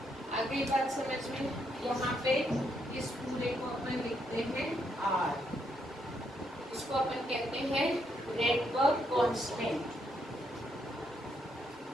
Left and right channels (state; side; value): normal; both; correlation 0.76